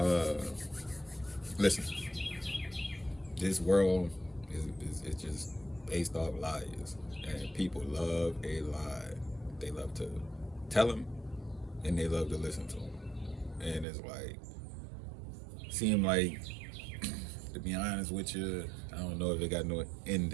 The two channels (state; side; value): drops out; left; at 13.9 s